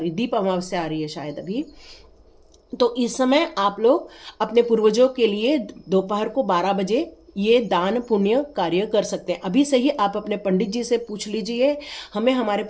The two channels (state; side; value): identical; both; correlation 1.00